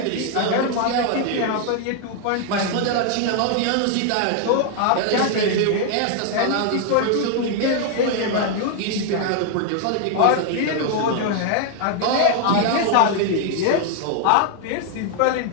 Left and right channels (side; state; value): both; different; correlation 0.00